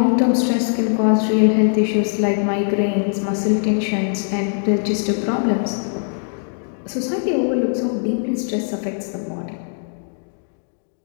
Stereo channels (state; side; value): silent; right; 65 dB below the other